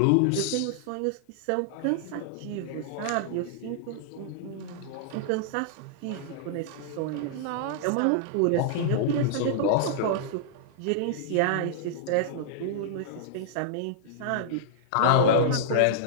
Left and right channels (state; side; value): different; both; correlation -0.01